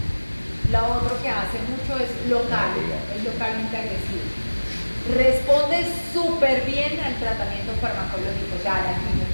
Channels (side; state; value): both; inverted; correlation -1.00